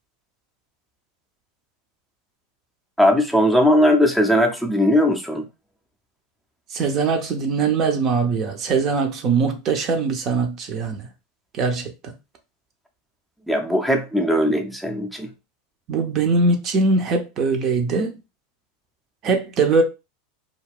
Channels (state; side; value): normal; both; correlation 0.46